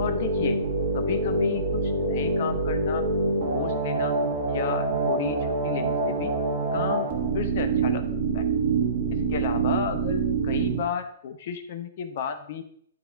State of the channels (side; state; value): both; inverted; correlation -0.43